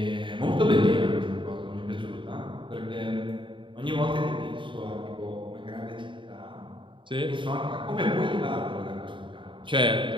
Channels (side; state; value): left; late; 0.24 ms